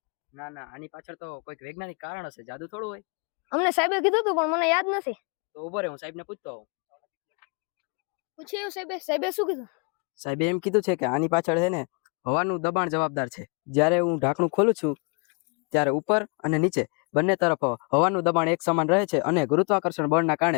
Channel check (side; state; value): right; quieter; 35.1 dB